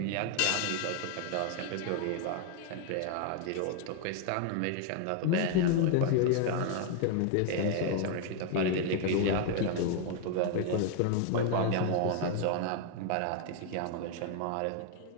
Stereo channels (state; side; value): different; both; correlation 0.00